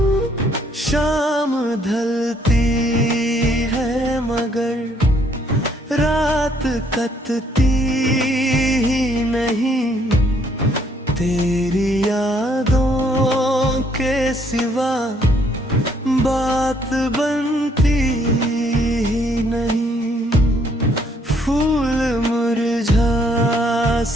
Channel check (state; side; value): normal; both; correlation 0.67